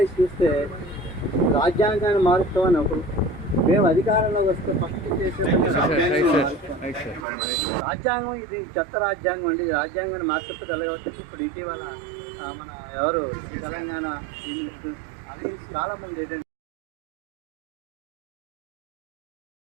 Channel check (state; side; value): drops out; left; at 7.2 s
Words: చూస్తే రాజ్యాంగాన్ని మారుస్తామని ఒకరు, మేము అధికారంలో వస్తే ఫస్ట్ చేసే రాజ్యాంగం ఇది చెత్త రాజ్యాంగం అండి. రాజ్యాంగాన్ని మార్చకపోతే ఎలా వస్తుంది? ఇప్పుడు ఇటీవల మన ఎవరు తెలంగాణ అలాగే చాలా మంది ఏదంటే